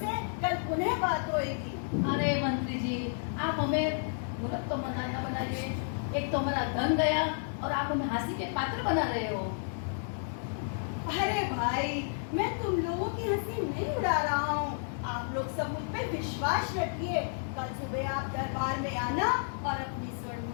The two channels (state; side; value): silent; right; digital silence